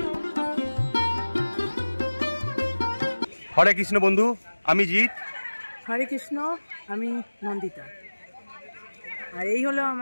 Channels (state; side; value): inverted; both; correlation -1.00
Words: হরে কৃষ্ণ বন্ধু, আমি জিৎ। হরে কৃষ্ণ, আমি নন্দিতা। আর এই হলো